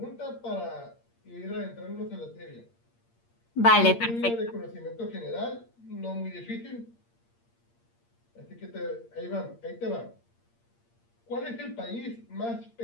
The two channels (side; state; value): right; late; 8.6 ms